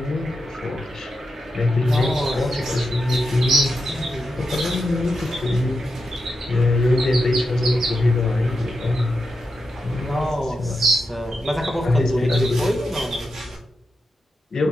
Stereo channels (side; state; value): both; normal; correlation 0.87